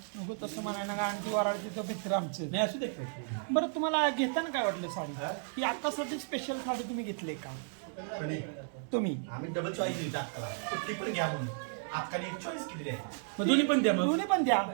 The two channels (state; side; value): silent; left; 55 dB below the other